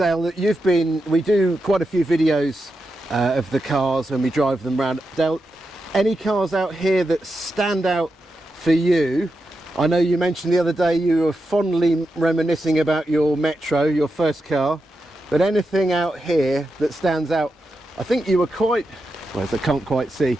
that we do quite a few videos of the cars when we drive them around. Dale, any cars out here that stand out for you? I know you mentioned the other day you were fondly reminiscing about your Metro, your first car, but anything out here that stands out? I think you were quite, well, I can't quite see.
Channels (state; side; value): normal; both; correlation 0.88